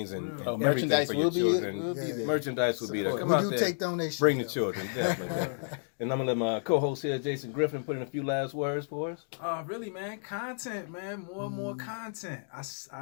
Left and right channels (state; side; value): silent; right; digital silence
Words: and merchandise will will be there. Merchandise will be there. Come We out do there. take donations. Bring the though. children, definitely. And I'm gonna let my co-host here, Jason Griffin, put in a few last words for us. Really, man, content, man, more and more content. I